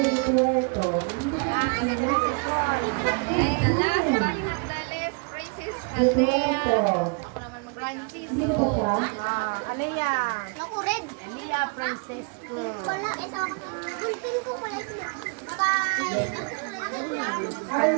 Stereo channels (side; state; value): left; quieter; 35.1 dB